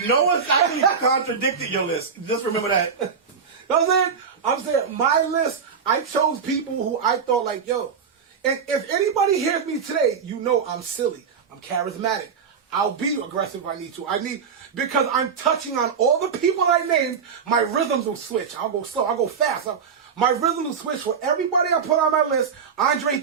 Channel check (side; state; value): left; quieter; 6.3 dB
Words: No one's actually contradicted your list. Just remember that. You know what I'm saying my list, I chose people who I thought like, yo, and if anybody hears me today, you know I'm silly. I'm charismatic. I'll be aggressive if I need to. Because I'm touching on all the people I named, my rhythms will switch. I'll go slow, I'll go fast. My rhythm will switch for everybody I put on my list. Andre